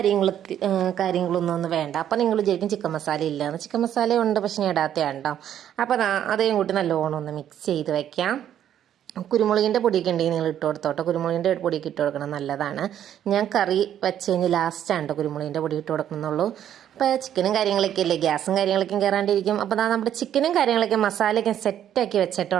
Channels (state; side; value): quieter; left; 10.4 dB